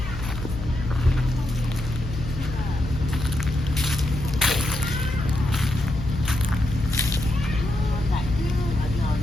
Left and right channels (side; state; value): left; noise; hum, 8 dB below the sound